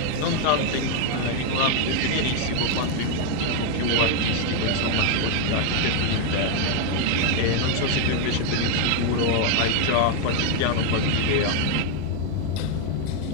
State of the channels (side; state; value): both; different; correlation 0.01